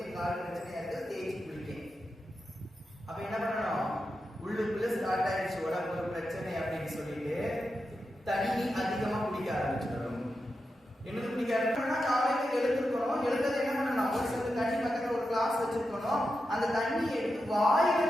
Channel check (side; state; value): both; normal; correlation 0.89